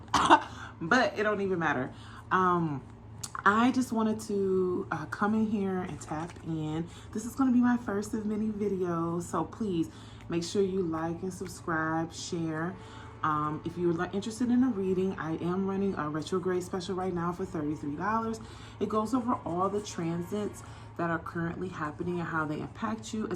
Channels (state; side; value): identical; both; correlation 1.00